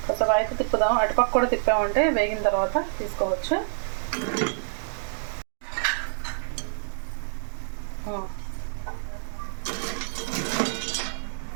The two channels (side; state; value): left; silent; digital silence